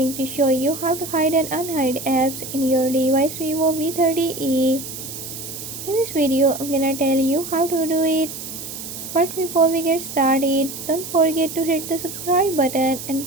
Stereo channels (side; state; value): right; noise; hiss, 9 dB below the sound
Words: to show you how to hide and unhide apps in your device Vivo V30e. In this video I'm gonna tell you how to do it. But before we get started, don't forget to hit the subscribe button and